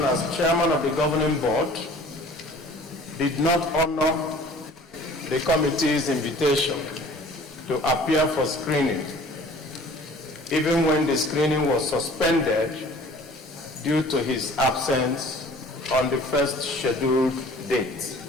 as chairman of the governing board, did not honor the committee's invitation to appear for screening, even when the screening was suspended due to his absence on the first scheduled date.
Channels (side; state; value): both; normal; correlation 0.49